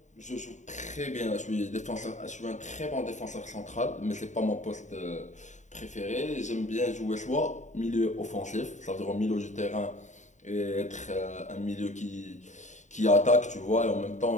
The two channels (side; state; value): right; late; 0.35 ms